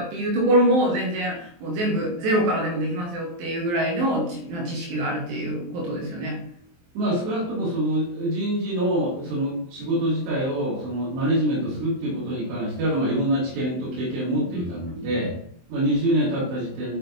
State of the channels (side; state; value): left; late; 23 ms